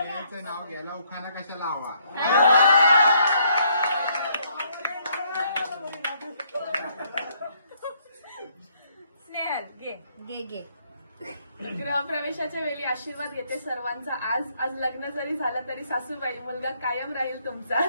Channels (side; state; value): both; inverted; correlation -0.70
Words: नाव घ्यायला उखाणा कशाला हवा. स्नेहल घे. गृहप्रवेशाच्या वेळी आशीर्वाद घेते सर्वांचा. आज लग्न जरी झालं तरी सासूबाई मुलगा कायम राहील